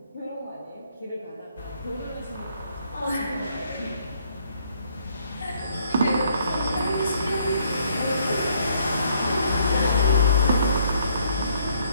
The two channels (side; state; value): both; inverted; correlation -0.67